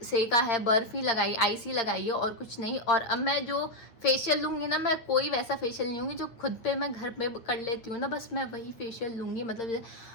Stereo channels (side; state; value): right; late; 8.7 ms